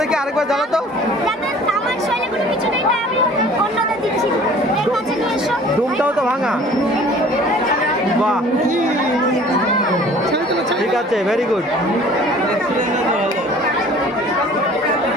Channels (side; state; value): both; normal; correlation 0.49